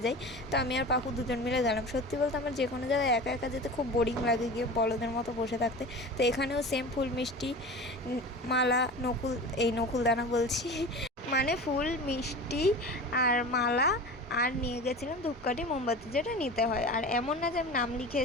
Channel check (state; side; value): normal; both; correlation 0.34